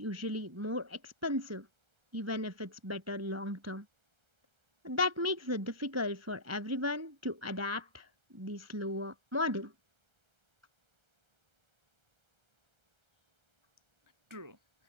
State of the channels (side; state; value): left; late; 1.3 ms